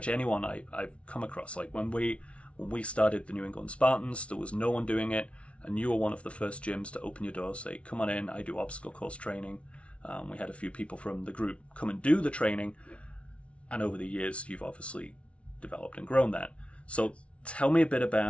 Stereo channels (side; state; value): right; late; 0.062 ms